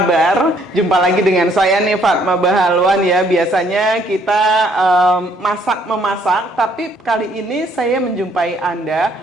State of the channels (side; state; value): both; normal; correlation 0.65